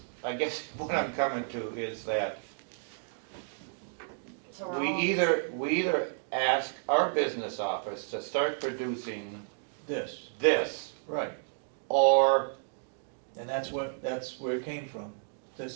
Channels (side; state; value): left; silent; digital silence